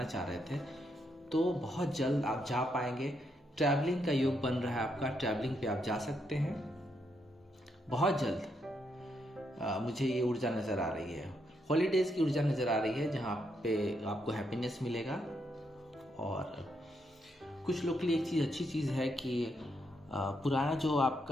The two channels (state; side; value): normal; both; correlation 0.78